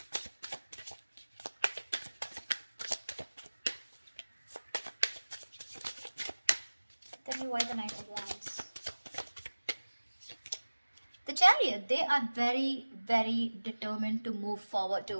Tell me why the Knight of Wands. The Chariot, they are very, very determined to move forward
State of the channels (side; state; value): both; inverted; correlation -1.00